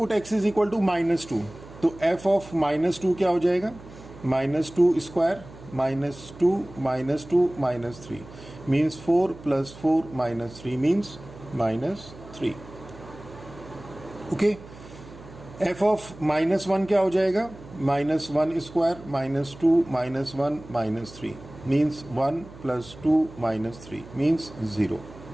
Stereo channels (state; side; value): noise; right; hum, 18 dB below the sound